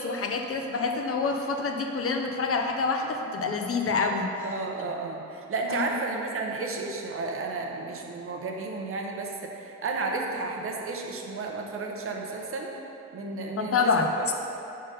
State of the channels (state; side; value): normal; both; correlation -0.05